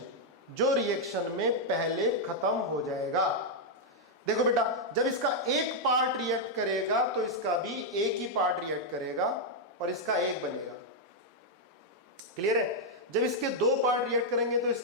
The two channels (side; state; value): both; normal; correlation -0.02